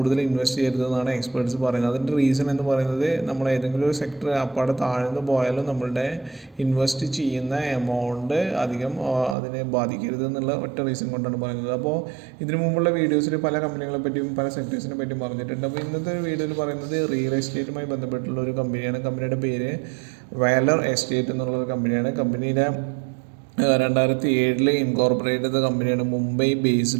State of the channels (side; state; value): left; drops out; at 9.3 s